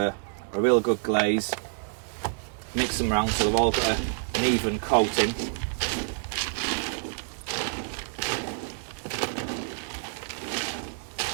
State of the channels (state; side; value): silent; left; digital silence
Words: real good glaze. Mix them around so they've all got an even coating.